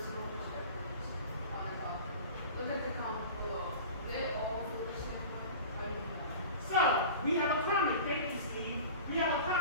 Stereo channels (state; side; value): inverted; both; correlation -0.37